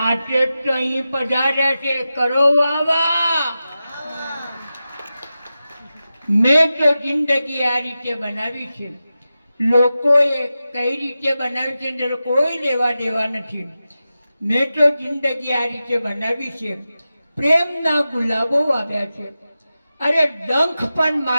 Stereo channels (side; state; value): both; inverted; correlation -0.93